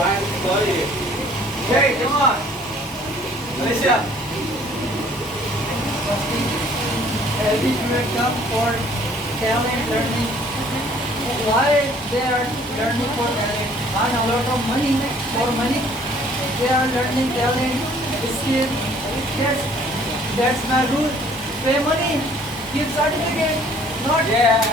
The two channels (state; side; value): normal; both; correlation 0.57